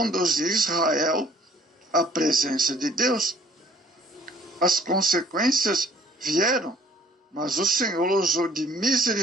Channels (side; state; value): both; normal; correlation 0.56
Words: Israel à presença de Deus. As consequências vieram, mas o Senhor usou de